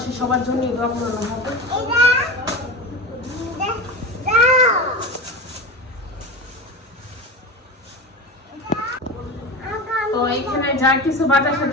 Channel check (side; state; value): both; normal; correlation 0.26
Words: সবার জন্য দোয়া করানো হবে। তো এখানে যা কিছু বাজার